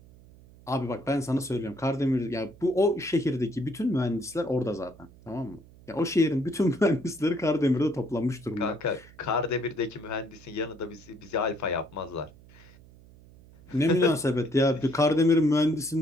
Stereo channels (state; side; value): noise; right; hum, 23 dB below the sound